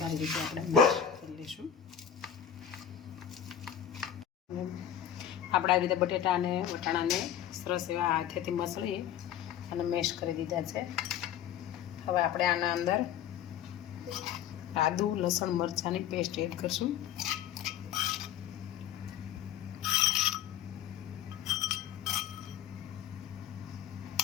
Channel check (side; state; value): right; quieter; 9.6 dB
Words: રીતે આપણે મેશ કરી લઈશું. આપણે આવી રીતે બટેટા અને વટાણાને સરસ એવા હાથેથી મસળી અને મેશ કરી દીધા છે. હવે આપણે આના અંદર આદુ લસણ મરચાંની પેસ્ટ એડ કરશું.